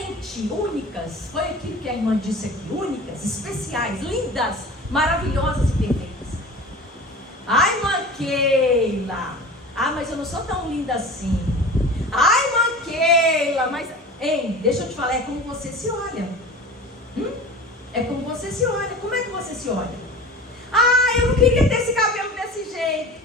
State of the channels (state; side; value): normal; both; correlation 0.37